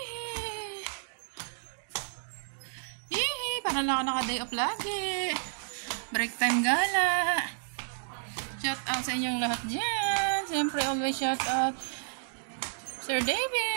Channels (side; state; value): left; silent; digital silence